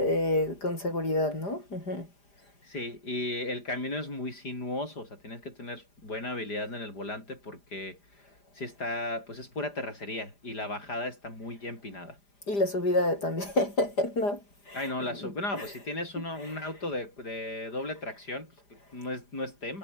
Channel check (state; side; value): late; right; 5.0 ms